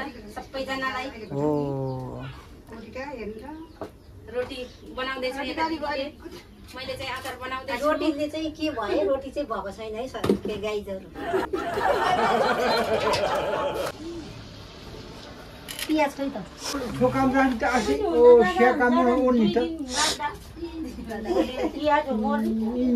सबैजनालाई रोटी बनाउँदैछु मैले चाहिँ अचार बनाउँदैछु रोटीले चाहिँ के भयो रोटी चाहिँ भएको छैन है सर के गाईजहरू पियाज खै त ठोकाम राख्नु त आसी ओ सेकाम ओर्नी त पियाज हो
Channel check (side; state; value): both; identical; correlation 1.00